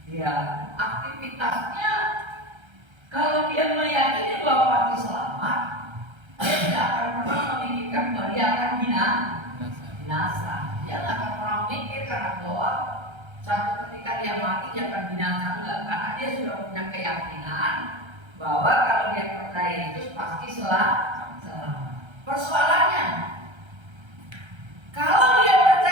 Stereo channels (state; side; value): late; left; 1.3 ms